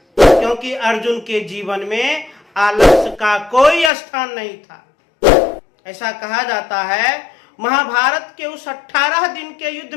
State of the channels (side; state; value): right; drops out; at 3.9 s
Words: क्योंकि अर्जुन के जीवन में आलस्य का कोई स्थान नहीं था। ऐसा कहा जाता है महाभारत के उस 18 दिन के युद्ध